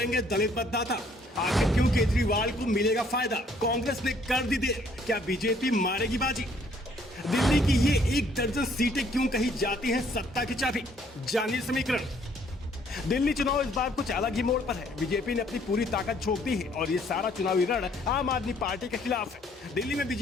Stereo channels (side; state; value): both; normal; correlation 0.63